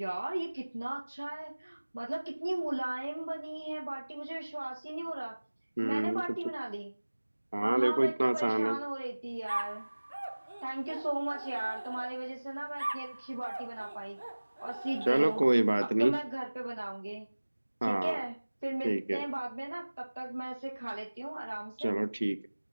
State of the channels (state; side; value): inverted; both; correlation -1.00